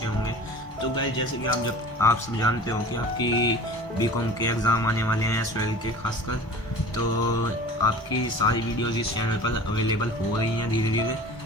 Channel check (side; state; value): both; normal; correlation 0.40